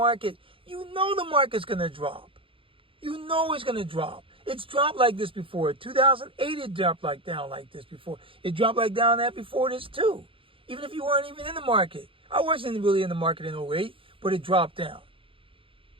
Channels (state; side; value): late; left; 0.26 ms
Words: you know the market's going to drop. You know it's going to drop. It's dropped like this before. 2008, it dropped down like this before. It dropped down that before this too. Even if you weren't even in the market. I wasn't really in the market in 2008, but it dropped down.